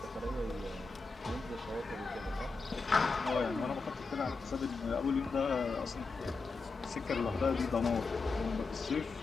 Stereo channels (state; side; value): quieter; right; 4.2 dB